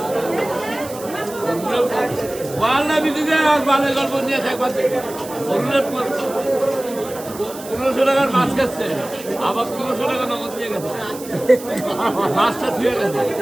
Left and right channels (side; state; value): right; noise; hiss, 15 dB below the sound